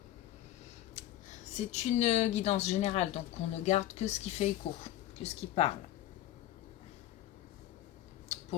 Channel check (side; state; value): right; quieter; 14.0 dB